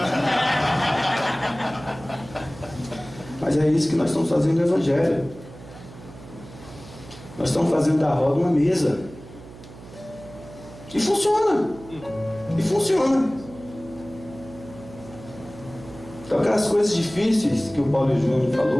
Mas é isso que nós estamos fazendo no Evangelho. Nós estamos fazendo da roda uma mesa. E funciona. E funciona. Então aquelas coisas difíceis que o Paulo Júnior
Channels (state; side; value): noise; right; hum, 17 dB below the sound